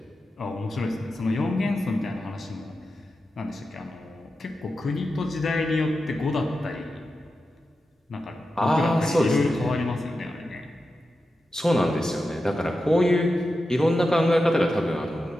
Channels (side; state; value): both; normal; correlation 0.91